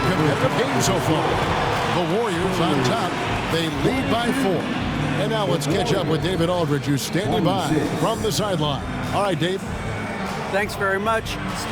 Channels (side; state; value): both; identical; correlation 1.00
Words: games so far. The Warriors on top. They lead by 4. And now let's catch up with David Aldridge, who's standing by from the sideline. All right, Dave. Thanks very much,